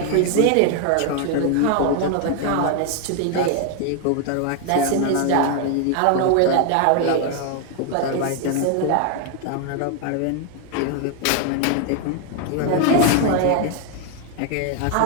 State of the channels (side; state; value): both; different; correlation 0.00